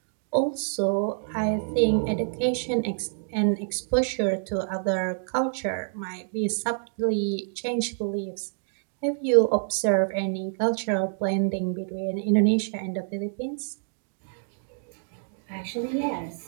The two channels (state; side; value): silent; left; digital silence